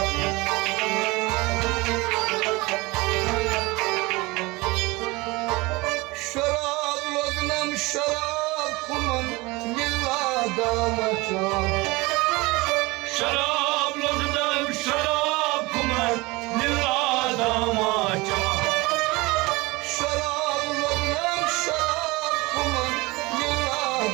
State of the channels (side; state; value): left; quieter; 23.2 dB